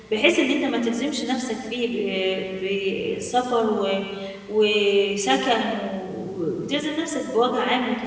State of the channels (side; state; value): both; identical; correlation 1.00